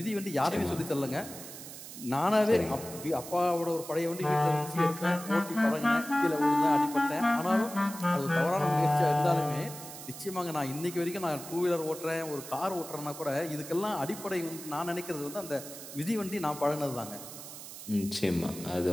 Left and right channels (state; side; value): noise; right; hiss, 12 dB below the sound